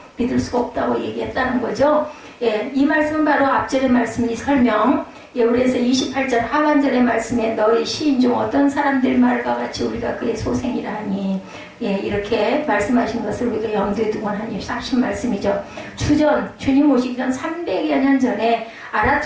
믿을 수가 없다고 얘기했다는 거죠. 예, 이 말씀은 바로 앞절의 말씀이 설명. 예, 그래서 28절 하반절의 말씀에 너희 시인 중 어떤 사람들 말과 같이 우리가 그의 소생이라 하니 예, 이렇게 말씀하신 것을 우리가 염두에 두고 하신 말씀이죠. 주님 오시기 전 300여 년 전에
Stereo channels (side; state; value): both; identical; correlation 1.00